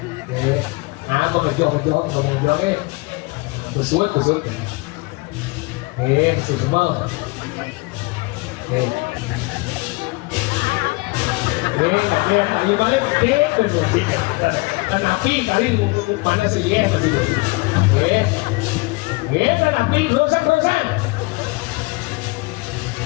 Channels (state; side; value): quieter; right; 25.9 dB